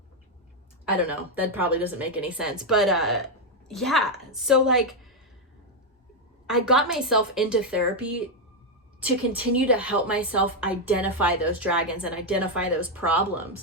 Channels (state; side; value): normal; both; correlation 0.03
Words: I don't know. That probably doesn't make any sense. But yeah. So like I got myself into therapy to continue to help myself identify those dragons and identify those